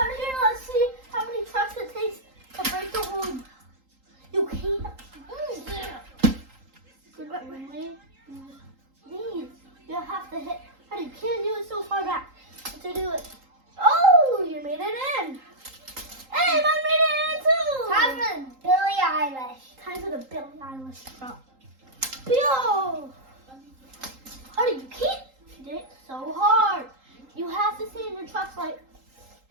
here, let's see how many trucks it takes to break the whole. You can't. These. You have to hit. How you can't do it so far back. To do it. Oh, you made it in. Hey, I made it in too. Time for Billie Eilish. Time for the Billie Eilish truck. Bill. Honey, you can't hit it so hard. You have to stay in your trucks like.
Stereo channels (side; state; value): left; late; 3.8 ms